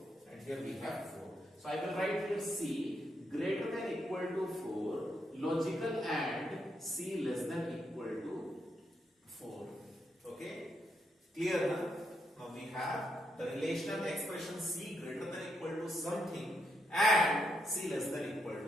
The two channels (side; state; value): both; normal; correlation 0.79